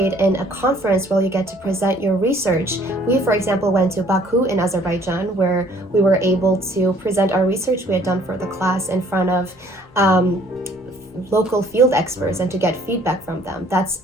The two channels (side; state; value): both; normal; correlation 0.59